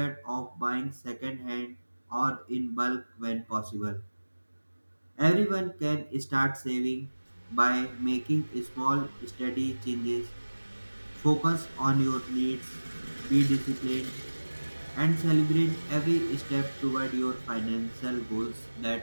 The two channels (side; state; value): both; inverted; correlation -1.00